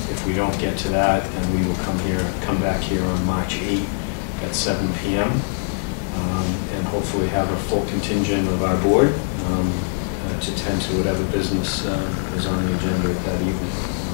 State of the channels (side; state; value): right; silent; digital silence